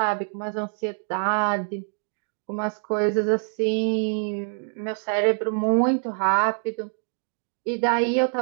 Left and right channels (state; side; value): silent; left; digital silence